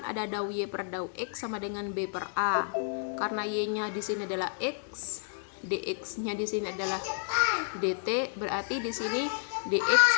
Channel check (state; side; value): silent; right; 57 dB below the other